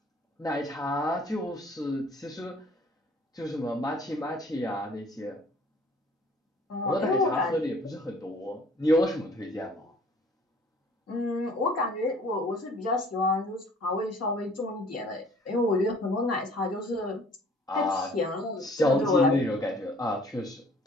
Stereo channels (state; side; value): normal; both; correlation 0.54